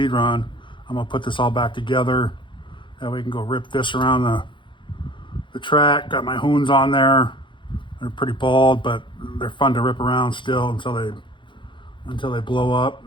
run. I'm gonna put this all back together. That way we can go rip this around the track. Got my hoons on there. They're pretty bald, but they're fun to rip around still until they blow up.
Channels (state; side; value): late; right; 0.23 ms